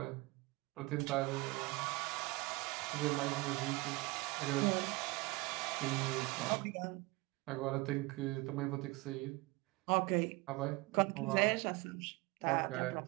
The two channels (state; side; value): quieter; left; 23.6 dB